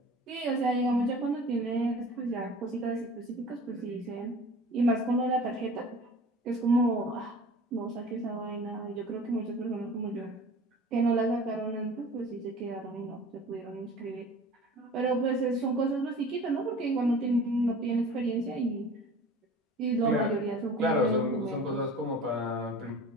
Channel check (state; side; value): normal; both; correlation 0.42